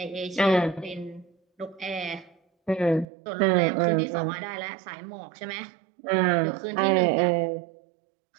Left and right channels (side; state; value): left; drops out; at 3.1 s